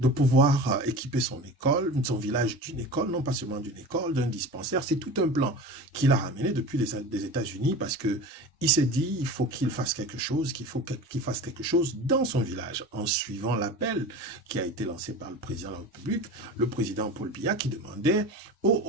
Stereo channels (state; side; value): normal; both; correlation 0.33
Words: pouvoir équiper son école, son village d'une école, non pas seulement d'une école, d'un dispensaire. C'est tout un plan qu'il a ramené depuis des États-Unis parce que il s'est dit, il faut qu'il fasse quelque chose, qu'il fasse quelque chose dans son village, en suivant l'appel qui a été lancé par le président de la République, le président Paul Biya, qui demandait